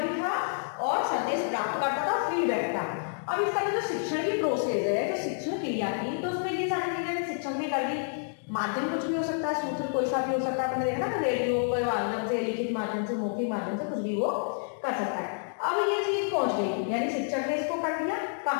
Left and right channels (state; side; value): silent; right; digital silence